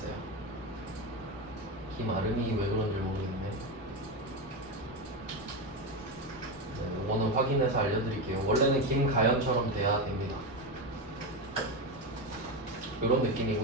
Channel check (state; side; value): normal; both; correlation 0.15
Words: 김아름이 왜 그런지 모르겠네. 네, 이거는 확인해서 알려드릴게요. 원래는 김가연처럼 돼야 됩니다. 이런